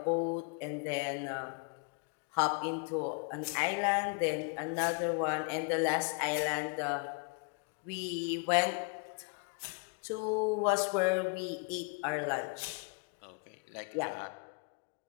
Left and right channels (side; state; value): right; quieter; 35.1 dB